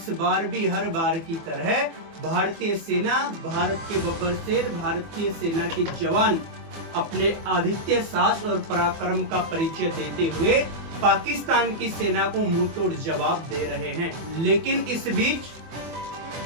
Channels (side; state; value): left; late; 24 ms